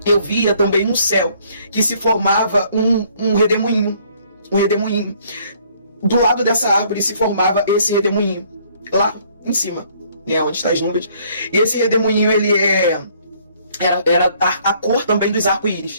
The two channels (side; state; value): both; inverted; correlation -0.62